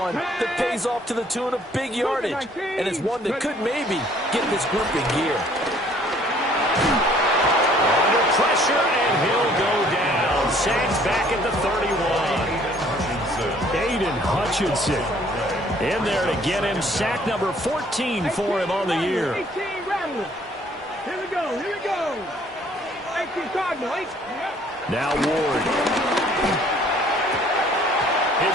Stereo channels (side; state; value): both; normal; correlation 0.58